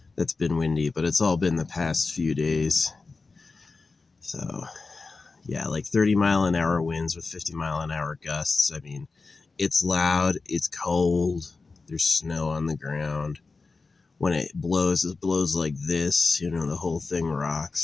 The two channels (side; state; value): right; quieter; 4.1 dB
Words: that's been windy, but it's all been the past few days. So, yeah, like 30-mile-an-hour winds with 50-mile-an-hour gusts. I mean, it's loud, it's cold, there's snow on the ground. When it blows like this, the whole thing